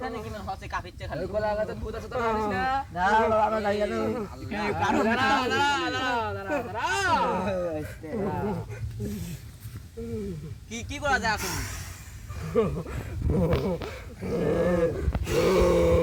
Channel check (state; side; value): identical; both; correlation 1.00